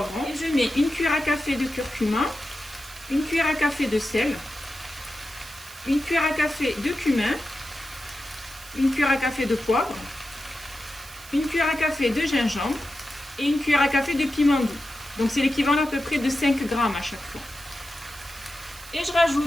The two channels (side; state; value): right; noise; hiss, 18 dB below the sound